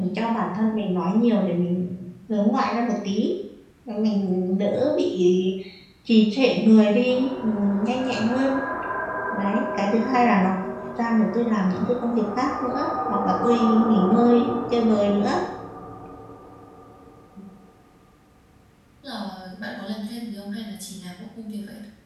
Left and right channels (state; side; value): identical; both; correlation 1.00